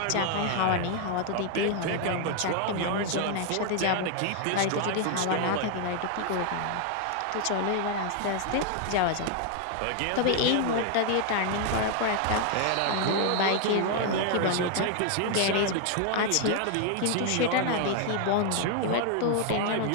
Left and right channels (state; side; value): different; both; correlation 0.00